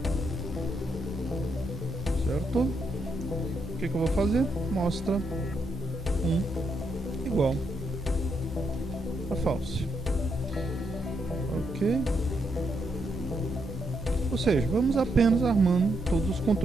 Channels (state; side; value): normal; both; correlation 0.79